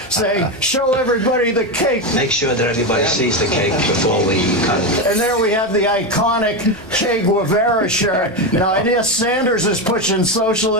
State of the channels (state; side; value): noise; right; hum, 24 dB below the sound